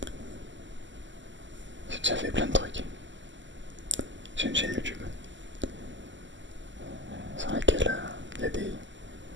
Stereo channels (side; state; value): left; late; 0.54 ms